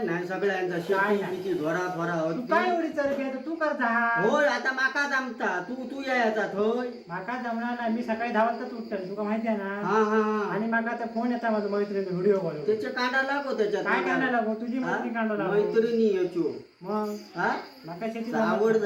नाही सगळ्यांचा काय शेती नाही. बिती घोरा फोरा तू काय एवढी चरबी आहे, तर तू करता. होय आता माका जमता तू यायचा होय. माका जमणार नाही. मी सकाळी 10 वाजता उठतो, तुका माहिती आहे ना. हा हा हा आणि माका त्या फोन येता माझा मैत्रिणी व्हिडिओ कॉल. त्याचे कांदा लागो त्याच्यात काय कांदा लागो, तुझी हा? मैत्री कांदा लागो. मैत्रिणी याचो मग हा माका शेती आवड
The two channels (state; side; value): identical; both; correlation 1.00